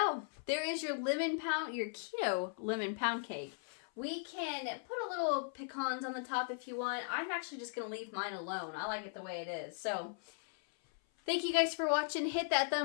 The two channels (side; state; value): right; silent; 53 dB below the other